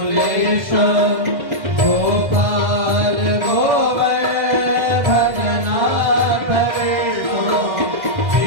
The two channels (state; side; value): late; left; 1.6 ms